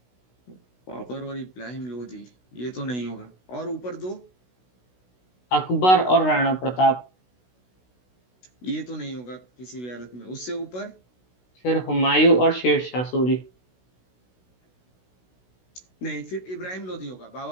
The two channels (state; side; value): late; right; 16 ms